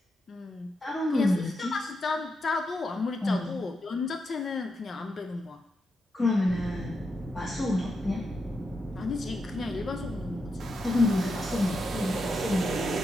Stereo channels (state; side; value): normal; both; correlation 0.85